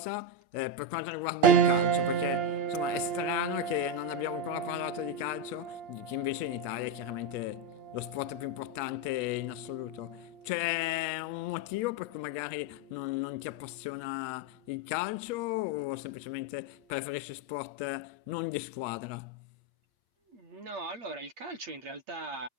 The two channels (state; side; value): late; left; 8.5 ms